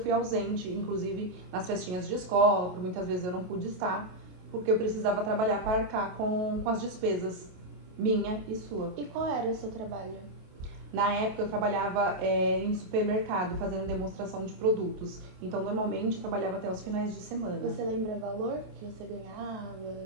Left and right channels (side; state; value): left; late; 28 ms